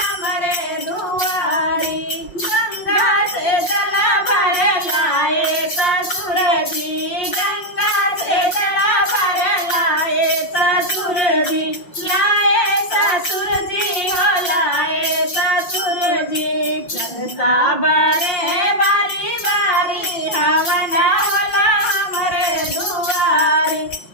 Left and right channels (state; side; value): late; right; 5.6 ms